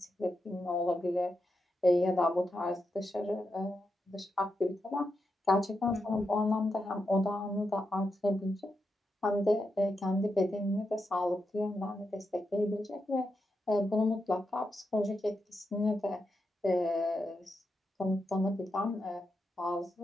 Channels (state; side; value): normal; both; correlation 0.86